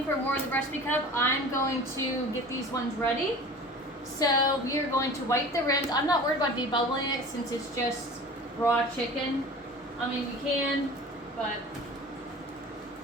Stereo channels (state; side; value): normal; both; correlation 0.40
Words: for more of the recipe cup, I'm going to get these ones ready. So we are going to wipe the rims. I'm not worried about debubbling it since it's just raw chicken. I mean, you can, but